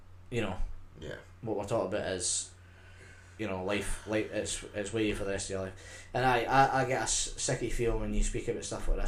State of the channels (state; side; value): identical; both; correlation 1.00